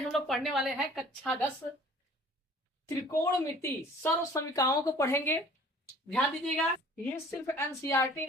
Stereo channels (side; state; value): both; normal; correlation 0.50